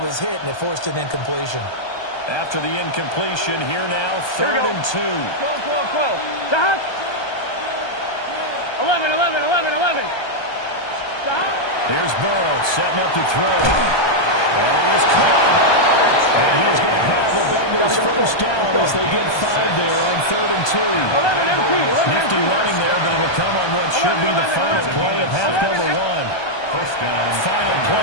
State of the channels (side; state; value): right; late; 1.2 ms